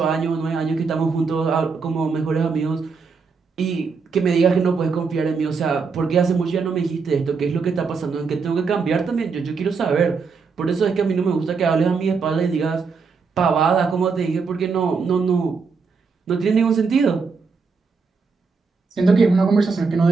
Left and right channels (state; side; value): quieter; left; 5.0 dB